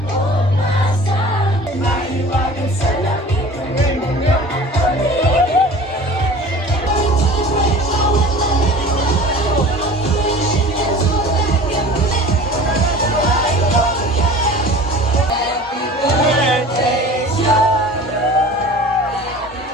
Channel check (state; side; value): normal; both; correlation 0.41